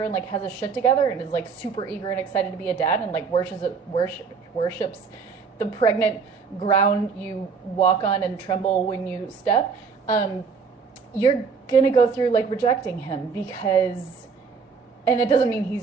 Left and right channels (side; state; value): left; quieter; 5.4 dB